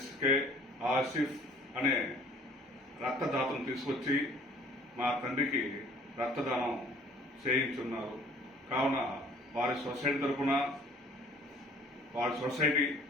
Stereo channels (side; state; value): both; normal; correlation 0.54